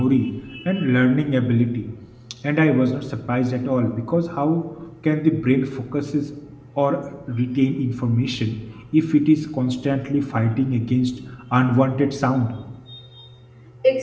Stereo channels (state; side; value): identical; both; correlation 1.00